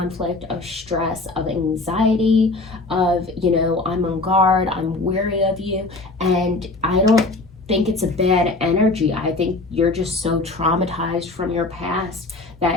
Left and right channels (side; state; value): right; quieter; 3.2 dB